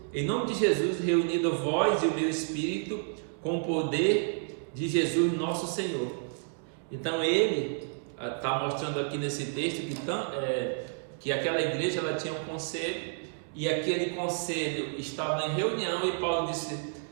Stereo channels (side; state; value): left; silent; digital silence